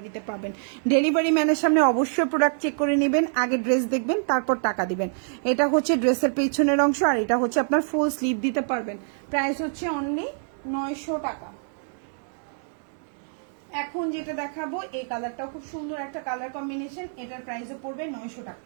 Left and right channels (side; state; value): left; silent; digital silence